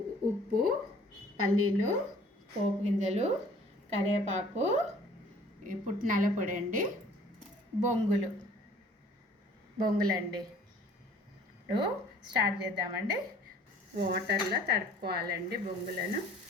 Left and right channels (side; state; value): both; normal; correlation 0.53